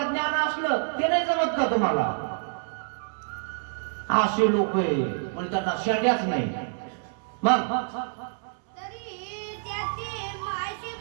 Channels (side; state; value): left; silent; digital silence